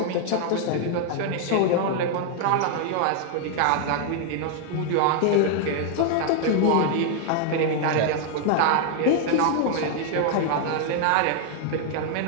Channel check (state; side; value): different; both; correlation 0.00